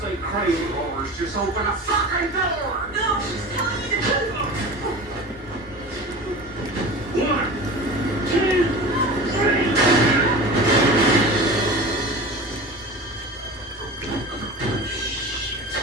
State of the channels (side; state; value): both; normal; correlation 0.34